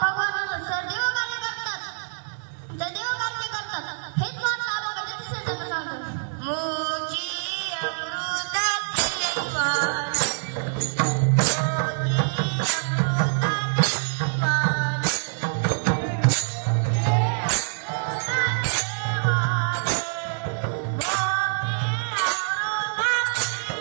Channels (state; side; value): silent; left; 61 dB below the other